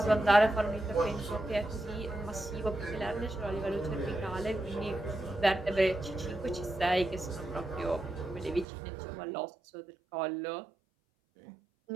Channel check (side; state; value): left; drops out; at 8.7 s